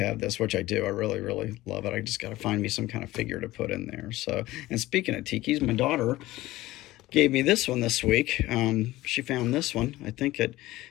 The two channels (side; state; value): right; quieter; 17.4 dB